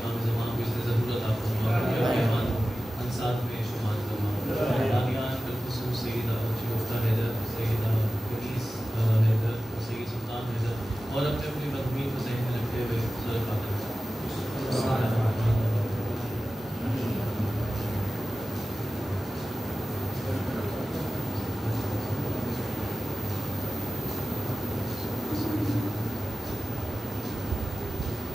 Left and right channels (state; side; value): normal; both; correlation 0.95